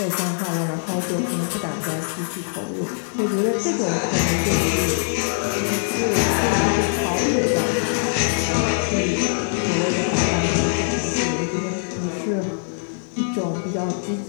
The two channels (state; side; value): silent; right; digital silence